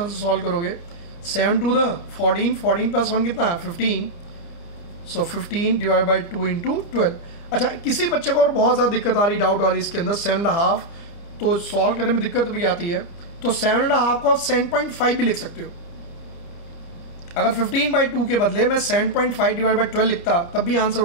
से सॉल्व करोगे? 7 to the 14, 14 प्लस 1 कितना है? 15। सो 15 डिवाइड बाई 2 इंटू 12। अच्छा, किसी बच्चे को और बहुत ज़्यादा दिक्कत आ रही, डाउट आ रही इसके अंदर 7.5, तो सॉल्व करने में दिक्कत भी आती है, तो 7.5 को आप 7.5 भी लिख सकते हो। अगर 15/2 के बदले मैं 7.5 डिवाइड बाई 12 लिखता तब भी आंसर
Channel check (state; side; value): late; right; 29 ms